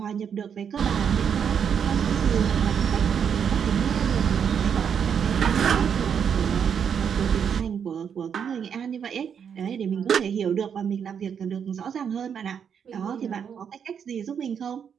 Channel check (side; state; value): left; quieter; 7.6 dB